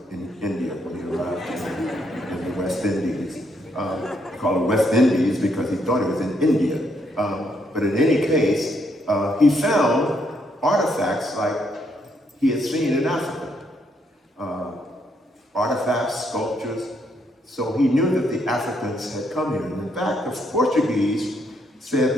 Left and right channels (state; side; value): normal; both; correlation 0.74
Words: in India when he arrived in the West Indies. He called it West Indies because he thought he was in India. But in any case, he found artifacts like he had seen in Africa. Artifacts, sculptures. So he knew that the Africans had come here. And in fact, the Portuguese said